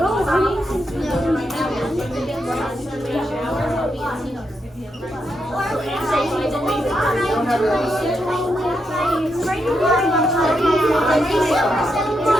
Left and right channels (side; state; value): both; normal; correlation 0.82